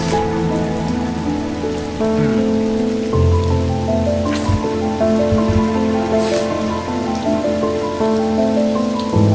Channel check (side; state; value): both; identical; correlation 1.00